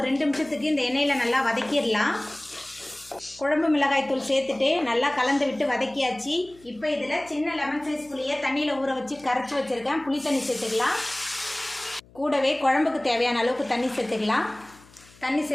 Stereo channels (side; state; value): left; noise; hum, 26 dB below the sound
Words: 2 நிமிஷத்துக்கு இந்த எண்ணெயில் நல்லா வதக்கிடலாம். குழம்பு மிளகாய் தூள் சேர்த்துட்டு நல்லா கலந்து விட்டு வதக்கியாச்சு. இப்போ இதில் சின்ன லெமன் சைஸ் புளியை தண்ணியில் ஊற வச்சு கரைச்சி வச்சுருக்கேன். புளி தண்ணி சேர்த்துக்கலாம். கூடவே குழம்புக்கு தேவையான அளவுக்கு தண்ணி சேர்த்துக்கலாம். தண்ணி